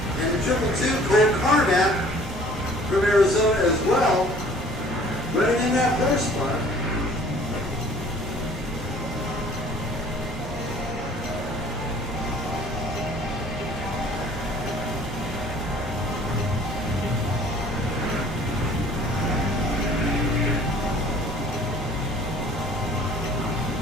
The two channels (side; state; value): both; normal; correlation 0.52